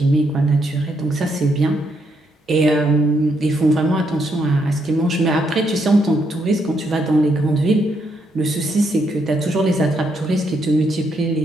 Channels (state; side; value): normal; both; correlation 0.76